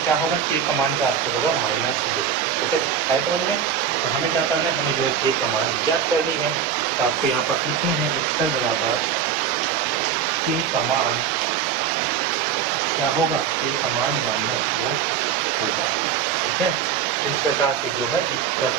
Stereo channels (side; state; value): left; quieter; 7.9 dB